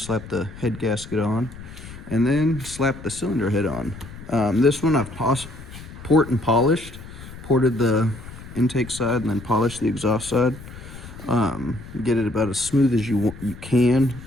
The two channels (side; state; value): left; noise; rumble, 15 dB below the sound